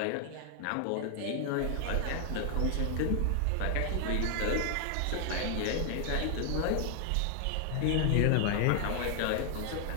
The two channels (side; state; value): both; different; correlation 0.00